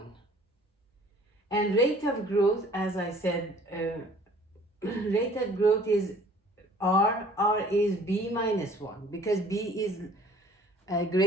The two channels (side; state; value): both; normal; correlation 0.52